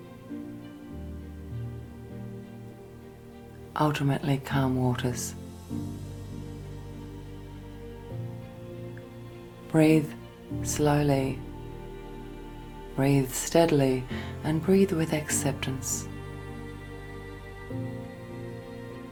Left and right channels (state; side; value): identical; both; correlation 1.00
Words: Ultimately, calm waters. Breathe slowly, breathe steadily, and breathe with acceptance.